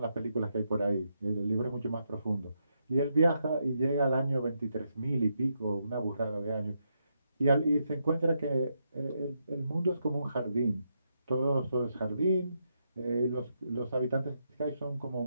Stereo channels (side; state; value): both; inverted; correlation -0.81